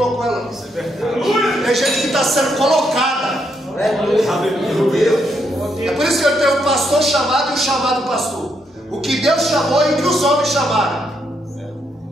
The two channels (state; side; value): normal; both; correlation 0.77